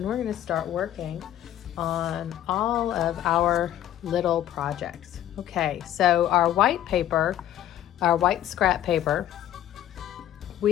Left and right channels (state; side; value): quieter; right; 12.1 dB